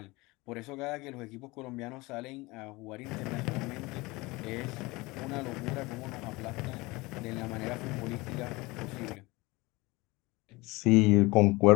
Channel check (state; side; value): quieter; right; 22.7 dB